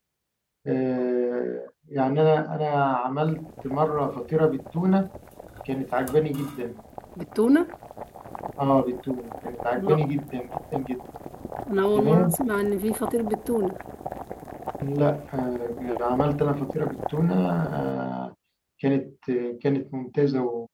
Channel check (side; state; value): both; identical; correlation 1.00